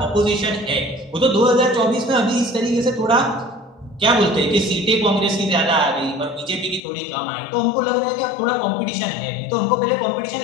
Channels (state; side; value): drops out; right; at 6.8 s